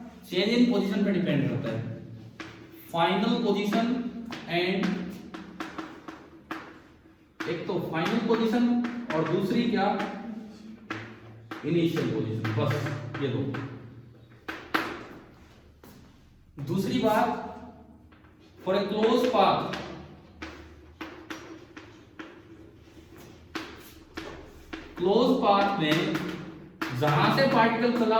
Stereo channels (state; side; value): identical; both; correlation 1.00